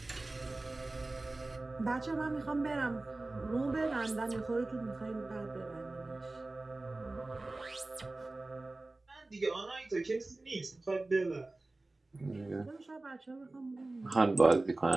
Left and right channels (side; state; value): left; quieter; 3.0 dB